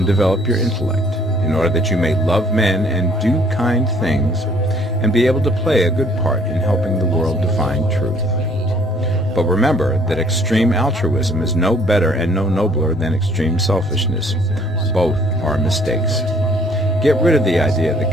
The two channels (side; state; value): both; normal; correlation 0.60